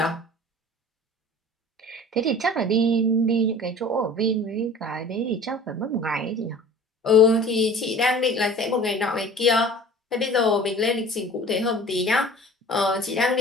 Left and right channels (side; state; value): both; normal; correlation 0.43